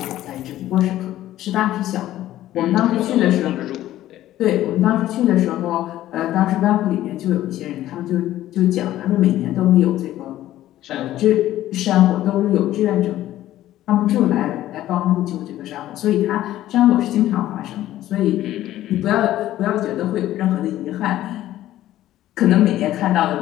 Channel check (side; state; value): right; quieter; 13.8 dB